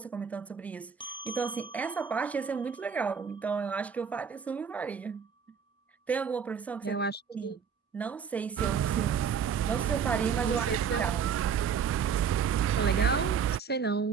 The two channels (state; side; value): quieter; left; 6.9 dB